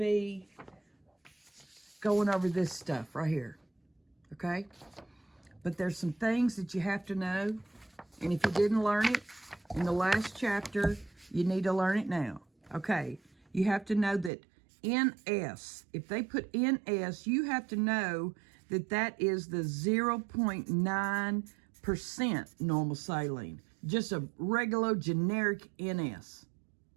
going over this stuff right here. Okay? But there's some things that you have to know. And if you didn't learn it in the last chapter, you need to learn it now. Okay? You have to know that NS, if they put NS, you have to know that that is the 0.9% normal saline. Just a regular generic NS.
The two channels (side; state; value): left; drops out; at 14.3 s